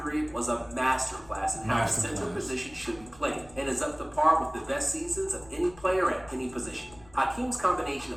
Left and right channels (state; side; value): noise; left; rumble, 23 dB below the sound